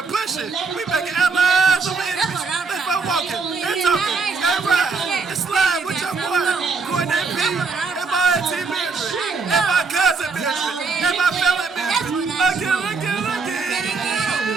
pushing. We making allies over enemies. Let's go walking. They're talking. They ride. It's slide with your boy. Courtney P. And my auntie Mildred. And my cousin Mildred. And my family Mildred. Look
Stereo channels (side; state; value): left; quieter; 4.6 dB